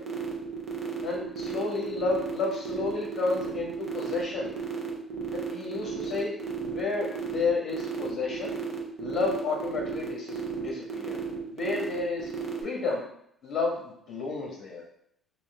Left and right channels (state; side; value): normal; both; correlation 0.51